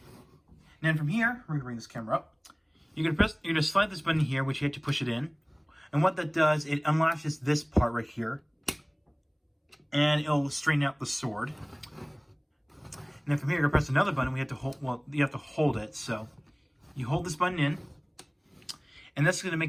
then from here, we're gonna bring this camera up. You're gonna slide this button here, which you have to push it in. And what that does, it unlatches this part right here. And it'll straighten out the sword. And then from here, you're gonna press another button. We have to hold, well, you have to hold it. So you hold this button in. And that's gonna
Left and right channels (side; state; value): both; identical; correlation 1.00